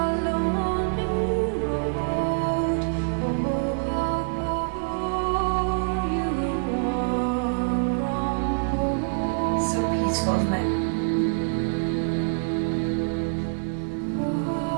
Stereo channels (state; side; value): silent; left; digital silence